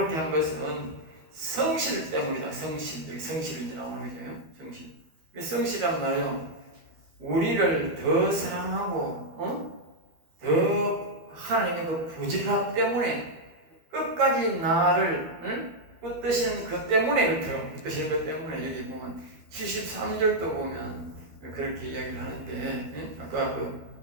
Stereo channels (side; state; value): left; late; 12 ms